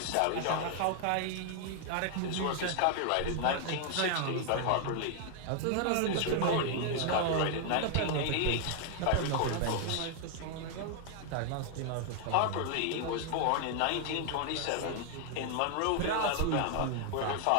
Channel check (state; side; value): different; both; correlation 0.00